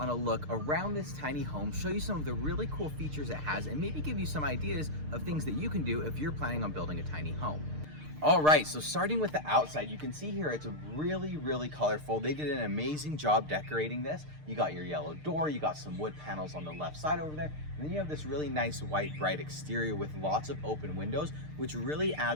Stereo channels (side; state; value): left; late; 6.6 ms